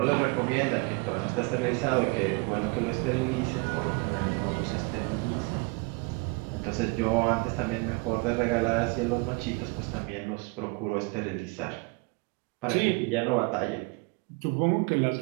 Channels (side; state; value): left; quieter; 28.9 dB